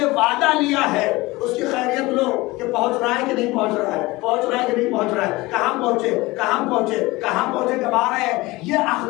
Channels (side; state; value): right; quieter; 21.1 dB